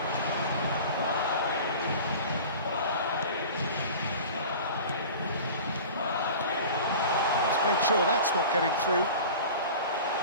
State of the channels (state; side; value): inverted; both; correlation -0.38